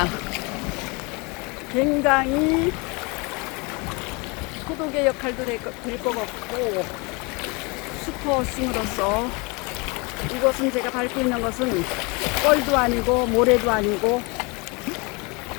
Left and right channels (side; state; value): right; quieter; 28.8 dB